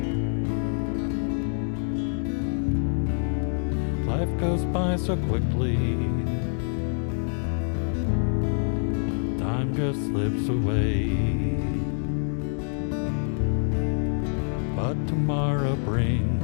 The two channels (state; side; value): silent; right; 60 dB below the other